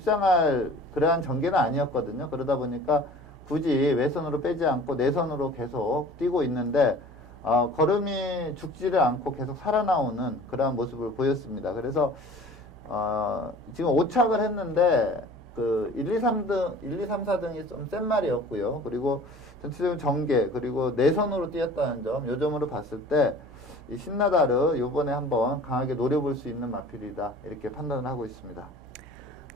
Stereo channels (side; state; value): right; noise; hum, 20 dB below the sound